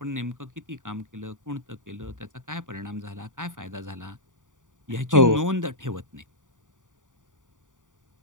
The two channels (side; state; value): left; late; 0.87 ms